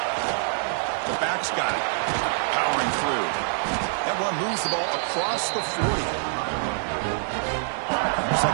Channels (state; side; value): silent; left; digital silence